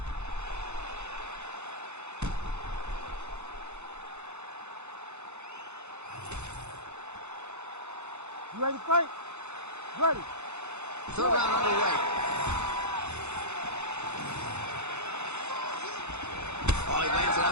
You ready to fight? Ready. Third round underway. Oh, he lands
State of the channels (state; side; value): late; left; 0.82 ms